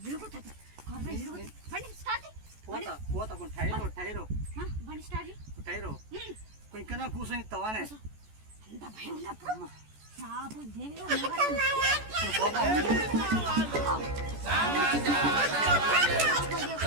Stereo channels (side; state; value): left; late; 14 ms